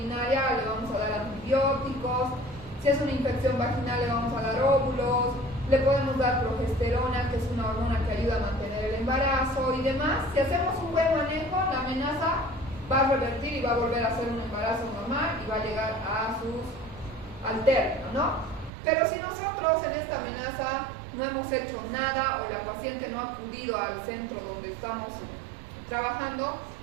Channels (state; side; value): drops out; left; at 18.7 s